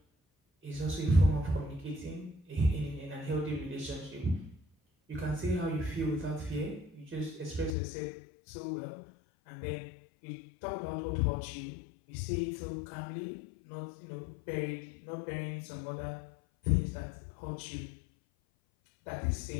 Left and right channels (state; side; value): drops out; right; at 7.8 s